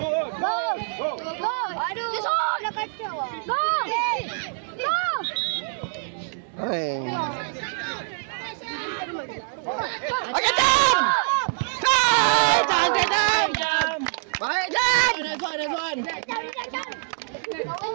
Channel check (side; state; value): left; silent; digital silence